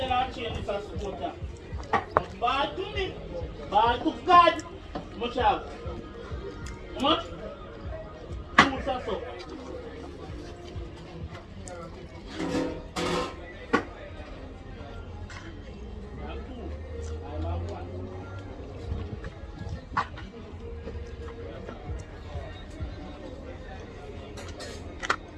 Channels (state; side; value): identical; both; correlation 1.00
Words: I'll change this as supporter. Ball to me. Ball to God. Much out. How much? 2 or so.